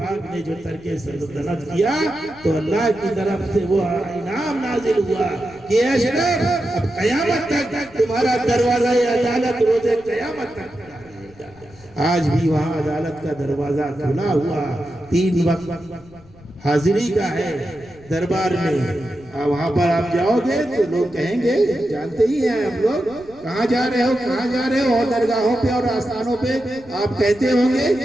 نے جو ترک سلطنت کیا تو اللہ کی طرف سے وہ انعام نازل ہوا کہ اشرف اب قیامت تک تمہارا دروازہ عدالت روز قیامت تک کھلا رہے گا۔ آج بھی وہاں عدالت کا دروازہ کھلا ہوا، 3 وقت حاضری کا ہے دربار میں، وہاں پر آپ جاؤ گے تو لوگ کہیں گے، جانتے ہی ہیں ہم لوگ، کہاں جا رہے ہو کہاں جا رہے ہو، اور درگاہوں پہ اور آستانوں پہ آپ کہتے ہوں گے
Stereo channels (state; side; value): noise; left; rumble, 25 dB below the sound